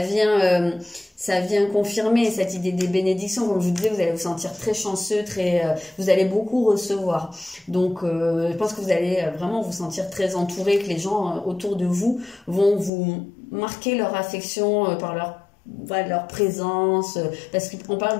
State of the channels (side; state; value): right; drops out; at 12.9 s